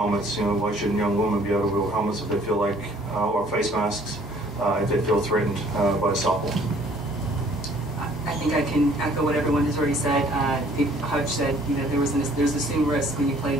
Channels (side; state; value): both; normal; correlation 0.58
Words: you know, why shouldn't young women be able to wear helmets if they feel like, or face masks? If they feel threatened by softball. I think I can echo what everyone has already said. Hutch said, you know, there's assumed risk when you play